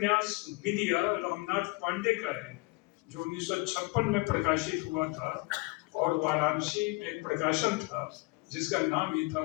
विद्या रामनाथ पांडे का है, जो 1956 में प्रकाशित हुआ था, और वाराणसी में एक प्रकाशन था जिसका नाम ही था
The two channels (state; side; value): quieter; right; 25.9 dB